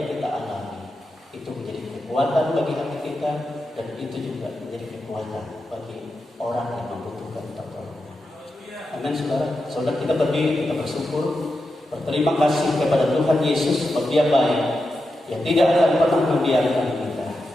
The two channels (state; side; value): normal; both; correlation 0.89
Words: kita alami itu menjadi kekuatan bagi hati kita, dan itu juga menjadi kekuatan bagi orang yang membutuhkan pertolongan. Amin, saudara. Saudara, kita berdiri, kita bersyukur, berterima kasih kepada Tuhan Yesus sebab Dia baik, yang tidak akan pernah membiarkan kita,